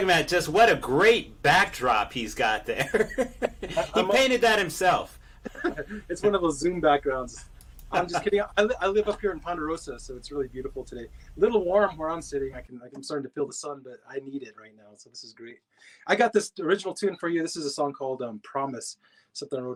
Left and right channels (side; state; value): both; identical; correlation 1.00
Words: about just what a great backdrop he's got there. He painted that himself. It's one of those Zoom backgrounds. I'm just kidding. I live up here in Ponderosa, so it's really beautiful today. A little warm where I'm sitting. I'm starting to feel the sun, but I need it right now, so this is great. I got this original tune for you. This is a song called Promise, something I